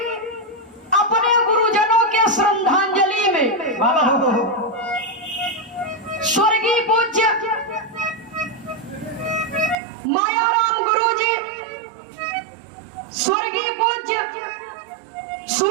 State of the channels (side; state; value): left; drops out; at 9.8 s